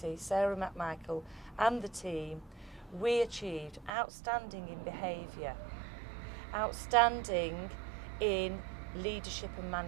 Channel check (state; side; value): drops out; left; at 3.9 s